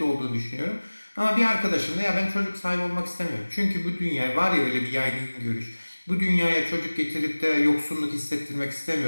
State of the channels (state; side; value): inverted; both; correlation -1.00